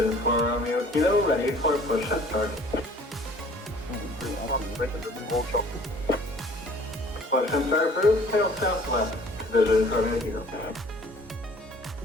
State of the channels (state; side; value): normal; both; correlation 0.52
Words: for Romeo Kilo, ready for push and start. Push and start approved, tail southwest, vision for Romeo Kilo.